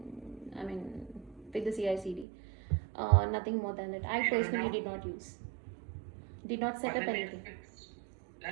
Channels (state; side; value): drops out; left; at 2.2 s